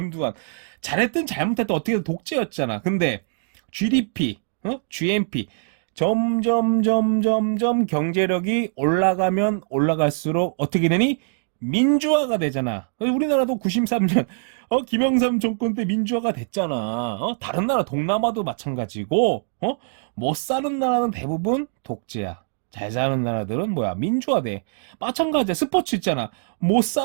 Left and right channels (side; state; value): left; silent; digital silence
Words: 잘했든 잘못했든 어떻게든 독재였잖아. 근데 GDP, GNP 점점 경제력이 올라가면 올라갈수록 어떻게 되니? 민주화가 되잖아. 우리나라도 93년 김영삼 정권 때 민주화가 됐잖아. 다른 나라 동남아도 마찬가지고 못 사는 나라는 대부분 독재야. 잘 사는 나라들은 뭐야? 민주화돼. 마찬가지야. 스포츠 있잖아. 못